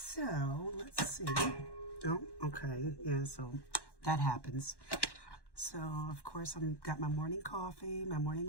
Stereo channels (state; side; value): late; right; 1.1 ms